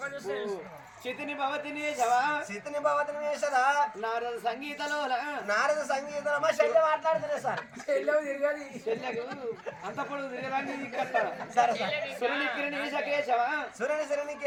చితిని భవతిని వేసవా సితిని భవతిని వేసదా నారద సంగీతలో నారద సంగీతం మా చెల్లె మాట్లాడుతున్నా సార్. తిరగాలి చెల్లెకు అంత పొడుగు తిరగడానికి సరే సార్. సురుని కిరణి వేసకేశవా సురని సురని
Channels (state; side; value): identical; both; correlation 1.00